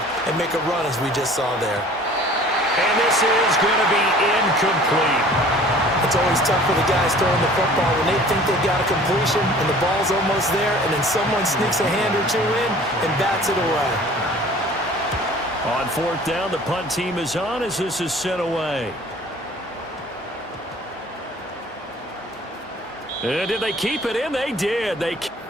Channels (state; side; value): normal; both; correlation 0.49